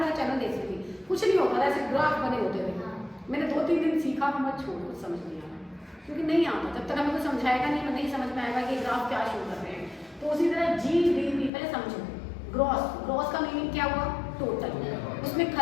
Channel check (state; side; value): drops out; right; at 11.5 s